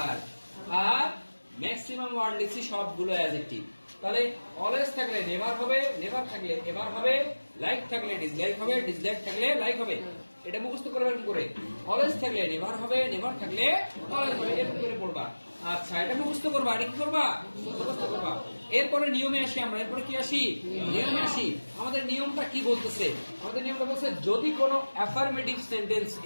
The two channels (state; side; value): inverted; both; correlation -1.00